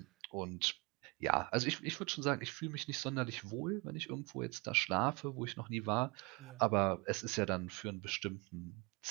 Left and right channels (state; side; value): quieter; left; 28.1 dB